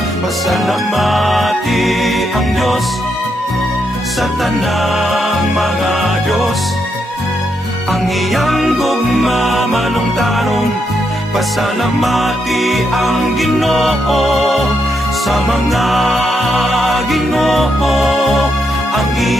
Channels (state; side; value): normal; both; correlation 0.80